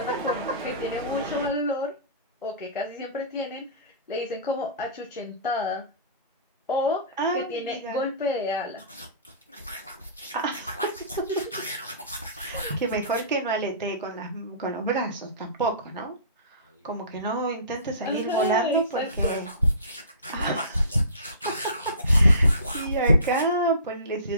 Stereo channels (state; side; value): inverted; both; correlation -0.39